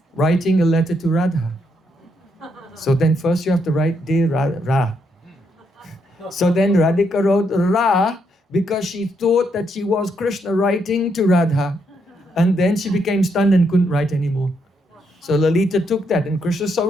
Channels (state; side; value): normal; both; correlation 0.77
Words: Writing a letter to Radha. So then first you have to write Dear Ra. So then Radhika wrote Ra because she thought that she was Krishna writing to Radha. And then she became stunned and couldn't write anymore. So Lalita took that, and Krishna so